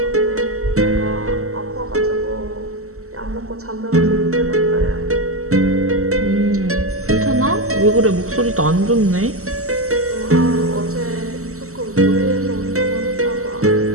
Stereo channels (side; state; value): left; late; 0.63 ms